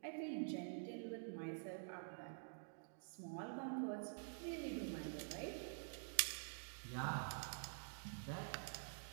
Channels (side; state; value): left; silent; digital silence